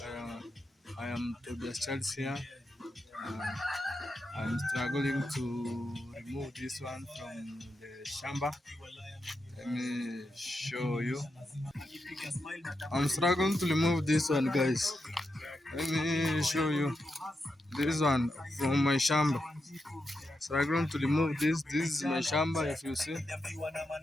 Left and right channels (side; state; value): both; normal; correlation 0.86